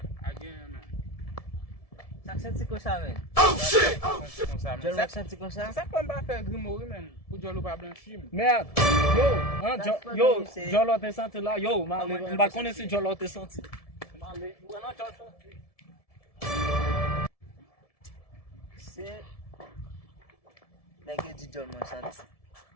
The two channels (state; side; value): late; right; 1.7 ms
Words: Again man. Sak senti kon sa men. Jol mak senti kon sa? Ça peut pas faire grimoire men. Pour jolo pas blanchir. Merde. Yo, Jolo te senti là. Yo, on va connaître si Jolo te senti. Se nèg di jol mwen senti.